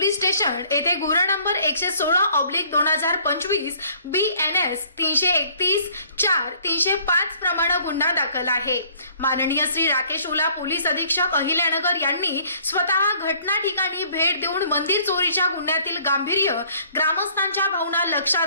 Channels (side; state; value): both; inverted; correlation -0.58